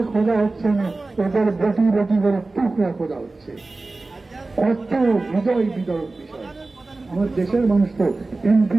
খোঁজা হচ্ছে না, ওদের বটি বটি করে টুকরা খোঁজা হচ্ছে। কত হৃদয় বিদরক বিষয়। আমার দেশের মানুষ তো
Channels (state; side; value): quieter; left; 3.3 dB